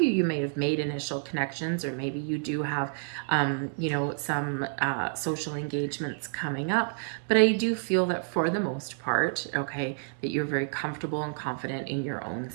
you may have made initial connections, or maybe you do have, you know, some social engagements coming up. But I do feel that for the most part, okay, that you're very comfortable and confident in your own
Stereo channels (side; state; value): left; silent; digital silence